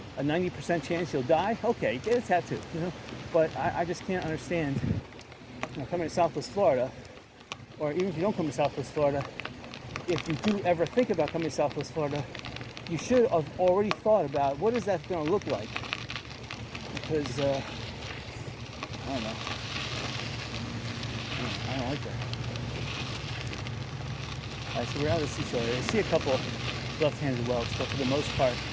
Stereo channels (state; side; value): identical; both; correlation 1.00